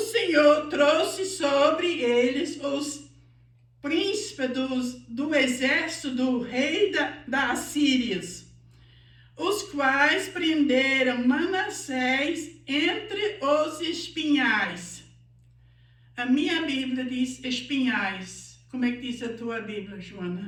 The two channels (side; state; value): both; identical; correlation 1.00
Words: trouxe sobre eles os príncipes do exército do rei da Assíria, os quais prenderam Manassés entre os espinhais. A minha Bíblia diz espinhais. Como é que diz a tua Bíblia,